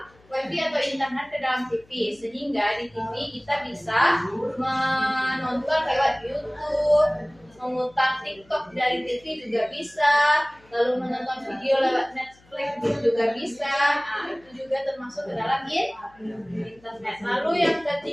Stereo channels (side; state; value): left; noise; hum, 29 dB below the sound